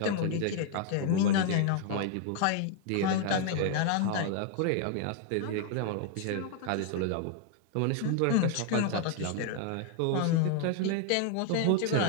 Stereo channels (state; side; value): different; both; correlation 0.00